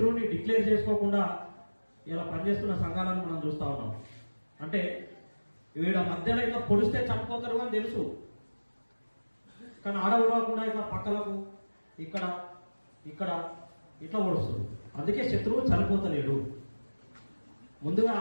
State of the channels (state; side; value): inverted; both; correlation -1.00